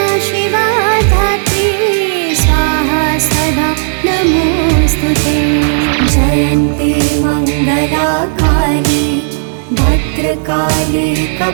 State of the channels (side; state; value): left; silent; digital silence